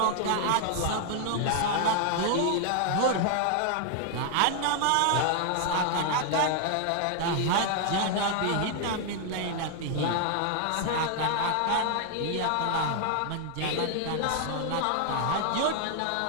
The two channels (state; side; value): different; both; correlation 0.00